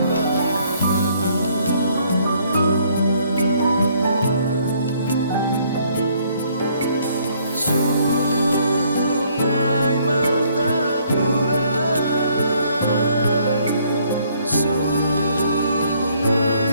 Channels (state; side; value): inverted; both; correlation -0.65